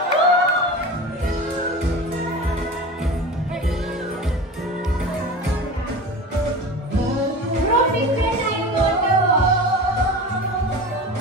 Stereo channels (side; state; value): both; normal; correlation 0.32